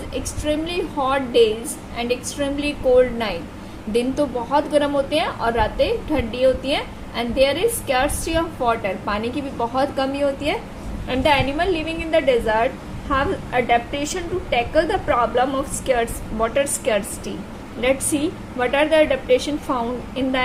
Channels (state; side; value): identical; both; correlation 1.00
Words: extremely hot days and extremely cold night. दिन तो बहुत गर्म होते हैं और रातें ठंडी होती हैं, and there is scarcity of water. पानी की भी बहुत कमी होती है, and the animal living in the desert have adaptation to tackle the problem of water scarcity. Let's see what are the adaptation found in the